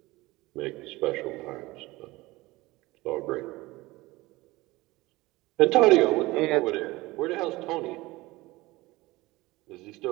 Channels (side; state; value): left; quieter; 20.2 dB